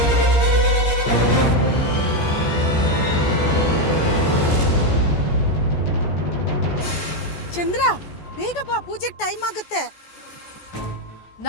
ಚಂದ್ರ, ಬೇಗ ಬಾ, ಪೂಜೆಗೆ ಟೈಮ್ ಆಗುತ್ತೆ.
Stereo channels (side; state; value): right; late; 14 ms